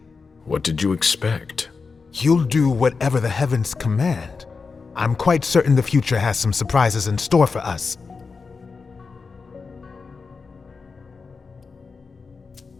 What did you expect? You'll do whatever the heavens command. I'm quite certain the future has some surprises in store for us.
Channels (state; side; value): quieter; right; 4.7 dB